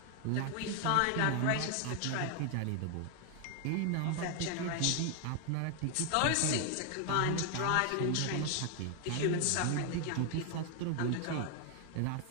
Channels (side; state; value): both; different; correlation 0.01